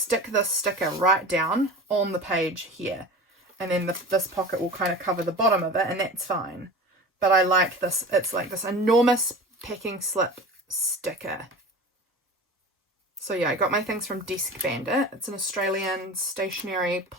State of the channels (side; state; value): both; normal; correlation 0.34